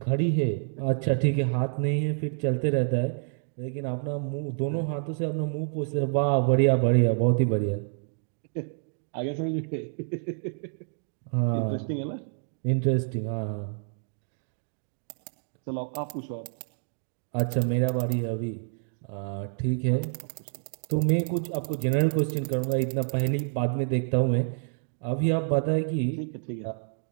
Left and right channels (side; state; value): left; silent; digital silence